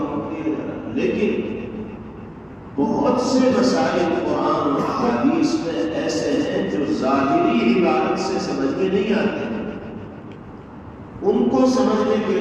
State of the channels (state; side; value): identical; both; correlation 1.00